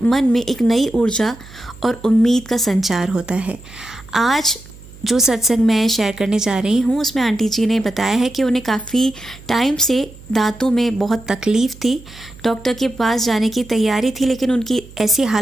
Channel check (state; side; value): noise; right; hum, 20 dB below the sound